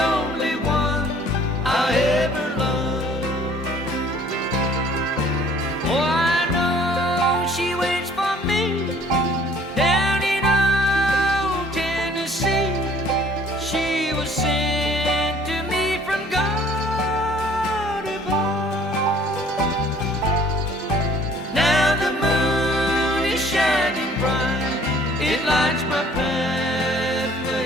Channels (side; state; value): both; normal; correlation 0.55